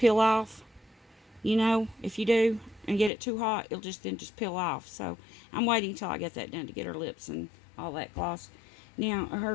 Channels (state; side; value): drops out; right; at 3.1 s